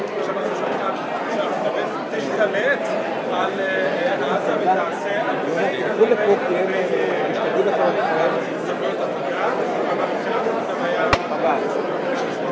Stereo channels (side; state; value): both; identical; correlation 1.00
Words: עכשיו אנחנו שומעים שארצות הברית תשתלט על עזה ותעשה סמכויות עבודה, אבל מבחינת זה היה